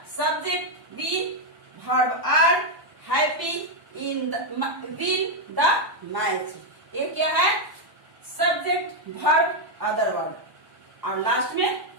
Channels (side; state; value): left; late; 1.2 ms